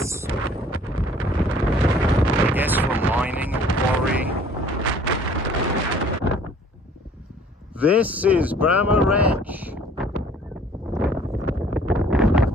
I guess from mining or quarrying. This is Bramah Edge.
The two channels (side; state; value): both; normal; correlation 0.54